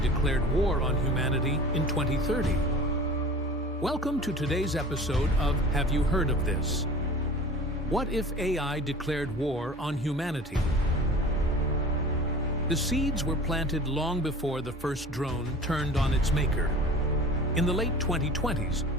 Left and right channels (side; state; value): both; normal; correlation 0.41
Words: war on humanity in 2030. Welcome to today's episode of Have You Heard of This? What if AI declared war on humanity? The seeds were planted long before the first drone turned on its maker. In the late 2020s,